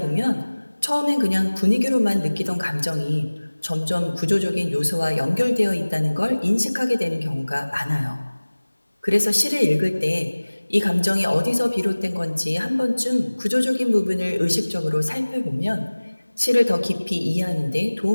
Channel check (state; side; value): inverted; both; correlation -1.00